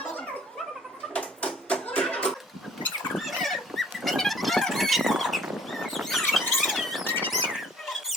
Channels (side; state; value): both; normal; correlation 0.56